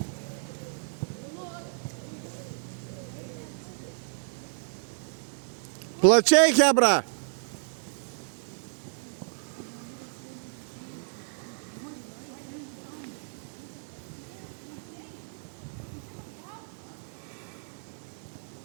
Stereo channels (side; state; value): left; silent; digital silence